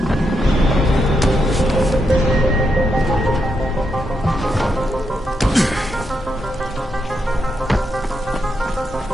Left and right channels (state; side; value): normal; both; correlation 0.82